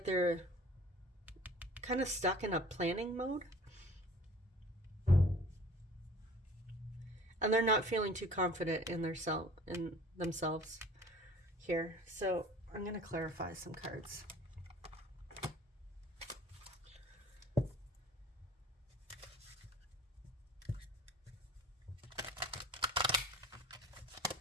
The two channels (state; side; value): normal; both; correlation 0.47